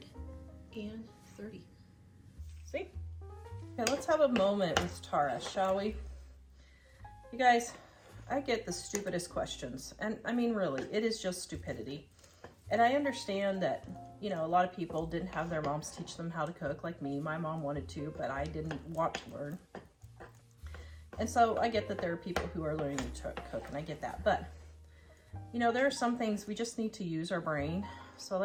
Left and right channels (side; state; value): both; identical; correlation 1.00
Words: See? Okay, let's have a moment with Tara, shall we? You guys, I get the stupidest questions. And I mean, really, it is just stupidity. And I understand that, you know, a lot of people didn't have their moms teach them how to cook like me. My mom wanted to, but I didn't want to learn. And so I get that there are people who are learning to cook, and I get that. But, you know, there are some things we just need to use our brain.